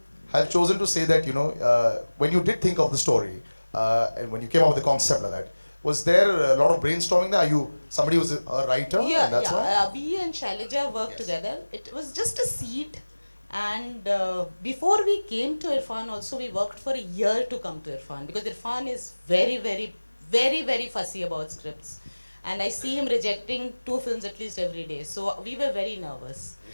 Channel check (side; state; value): both; inverted; correlation -1.00